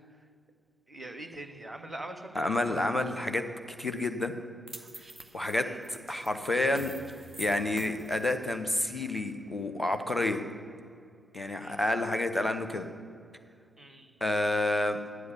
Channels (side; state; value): both; normal; correlation 0.84